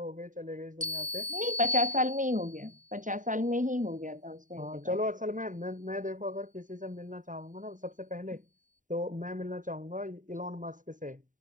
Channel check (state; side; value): late; left; 0.37 ms